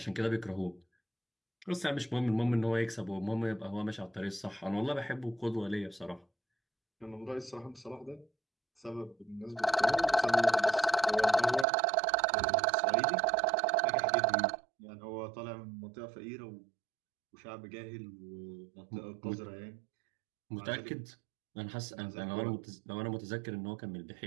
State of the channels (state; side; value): drops out; left; at 11.7 s